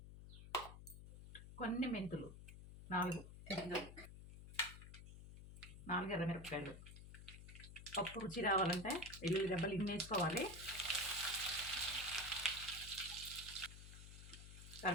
కొన్ని మెంతులు, 4 గింజలు, 4 ఎర్రమిరపకాయలు. పప్పు రుచి రావాలంటే వెల్లుల్లి రెబ్బలు ఇన్ని వేసుకోవాలి.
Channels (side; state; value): left; noise; hum, 13 dB below the sound